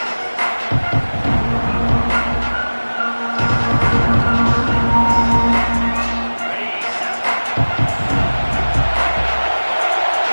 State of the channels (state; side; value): inverted; both; correlation -1.00